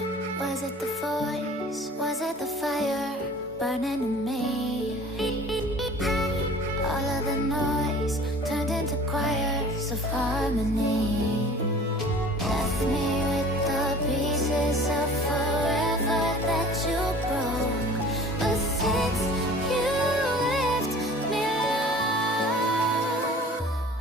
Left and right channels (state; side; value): normal; both; correlation 0.46